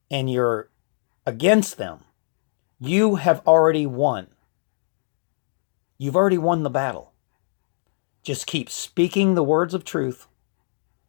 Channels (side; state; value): right; silent; digital silence